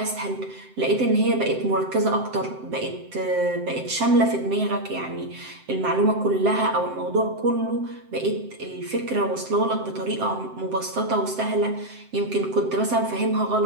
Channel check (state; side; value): late; left; 7.7 ms